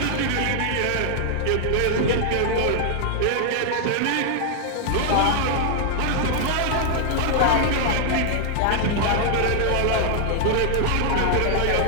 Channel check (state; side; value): different; both; correlation 0.00